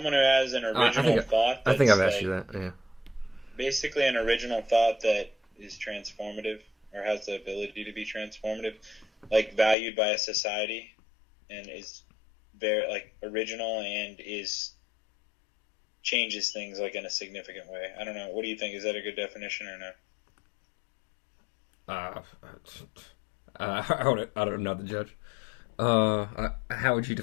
who has an original thought. I think I've asked you that, yeah. Basically an original thought that is transformative, or has the ability to be transformative, like valued by a society, and is very, like, original and changes things, like, in a significant way. I don't know. What do you think? Is that a good definition or no? I don't know the judge. How would you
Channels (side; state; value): right; drops out; at 9.8 s